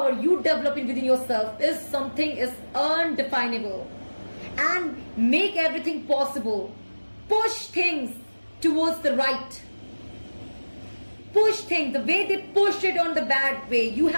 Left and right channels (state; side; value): inverted; both; correlation -1.00